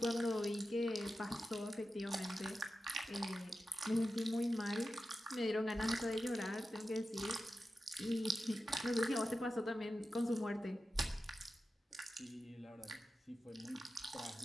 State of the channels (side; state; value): both; normal; correlation 0.92